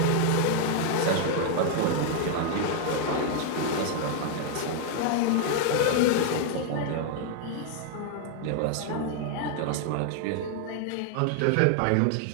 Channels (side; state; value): both; different; correlation 0.00